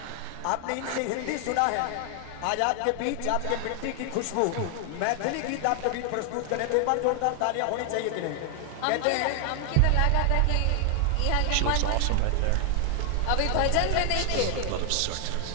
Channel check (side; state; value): both; different; correlation 0.00